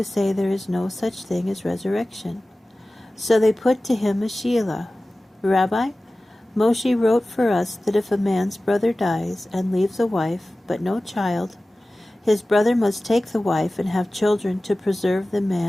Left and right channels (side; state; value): both; normal; correlation 0.97